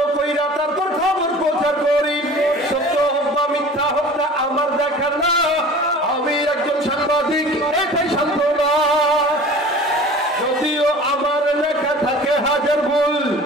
কইরা তারপর খবর প্রচার করি। সত্য হোক বা মিথ্যা হোক না আমার দেখার না, আমি একজন সাংবাদিক, এটাই সান্ত্বনা। যদিও আমার লেখা থাকে হাজার ভুল,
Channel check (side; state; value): both; normal; correlation 0.42